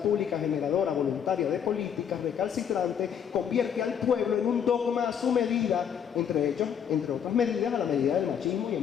generadora voluntaria de políticas recalcitrantes convierte al pueblo en un dogma a su medida, entre otras medidas, a la medida del machismo y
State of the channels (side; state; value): right; quieter; 8.2 dB